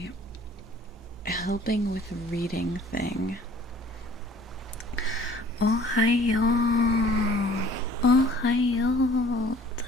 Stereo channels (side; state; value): both; normal; correlation 0.52